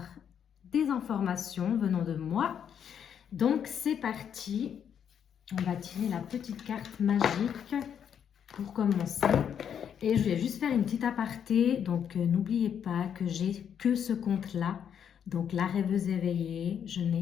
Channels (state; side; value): quieter; right; 8.4 dB